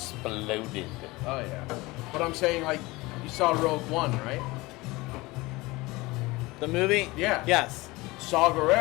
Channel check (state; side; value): quieter; right; 21.9 dB